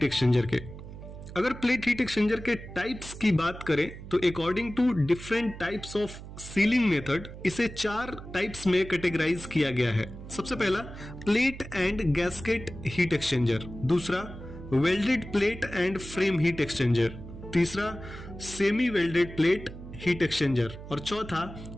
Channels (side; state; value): right; noise; hum, 13 dB below the sound